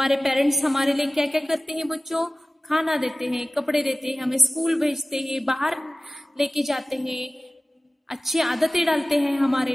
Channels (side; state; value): both; normal; correlation 0.96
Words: पेरेंट्स हमारे लिए क्या क्या करते हैं बच्चों, खाना देते हैं, कपड़े देते हैं, हमें स्कूल भेजते हैं, बाहर लेके जाते हैं, अच्छी आदतें डालते हैं हमारे